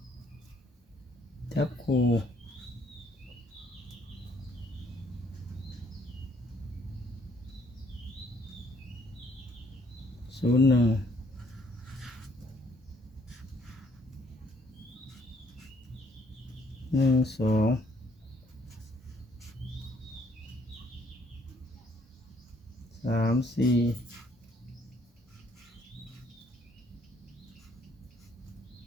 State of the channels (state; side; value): normal; both; correlation 0.66